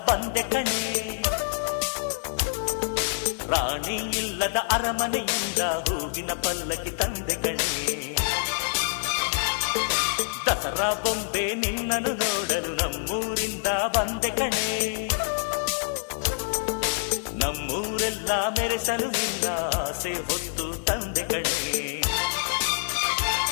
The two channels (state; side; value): silent; right; digital silence